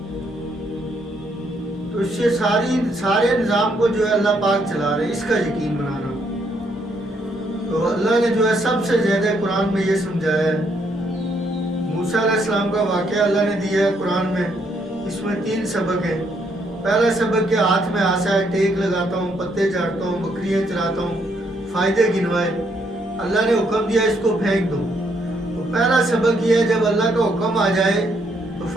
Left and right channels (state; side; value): normal; both; correlation 0.73